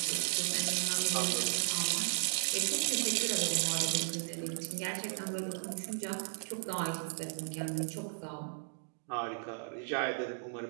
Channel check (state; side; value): silent; left; digital silence